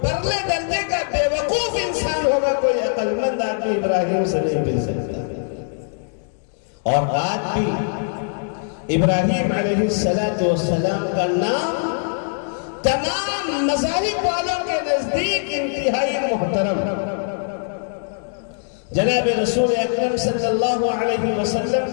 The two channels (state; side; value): silent; right; digital silence